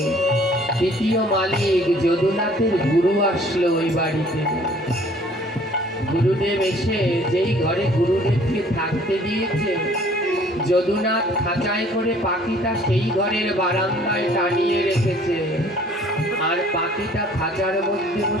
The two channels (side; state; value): both; normal; correlation 0.55